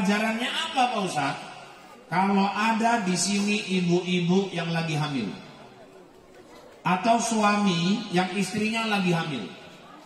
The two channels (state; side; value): identical; both; correlation 1.00